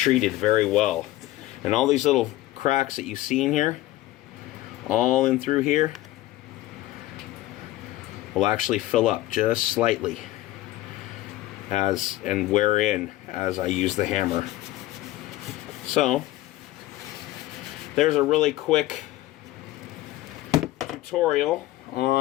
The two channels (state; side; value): quieter; right; 16.3 dB